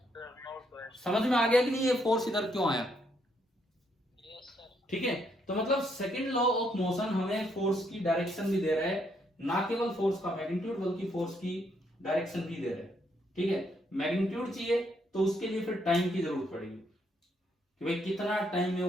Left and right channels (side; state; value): both; normal; correlation 0.74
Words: समझ में आ गया कि नहीं ये फोर्स इधर क्यों आया, ठीक है। तो मतलब सेकंड लॉ ऑफ मोशन हमें फोर्स की डायरेक्शन भी दे रहा है, ना केवल फोर्स का मैग्नीट्यूड बल्कि फोर्स की डायरेक्शन भी दे रहा है, ठीक है। मैग्नीट्यूड चाहिए तो उसके लिए फिर टाइम की जरूरत पड़ेगी कि भाई कितना टाइम में